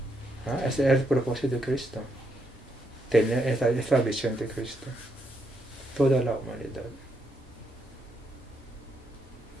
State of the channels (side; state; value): both; normal; correlation 0.78